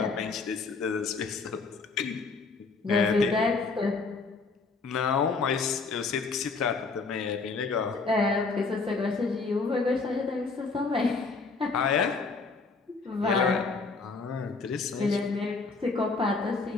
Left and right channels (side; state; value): right; quieter; 4.2 dB